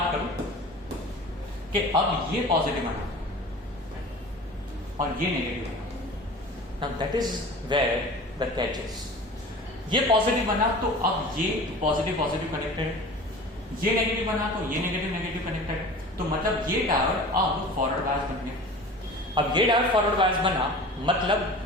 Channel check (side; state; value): both; normal; correlation 0.39